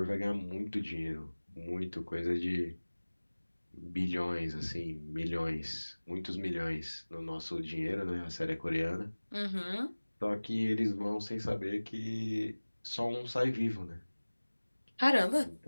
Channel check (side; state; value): both; inverted; correlation -1.00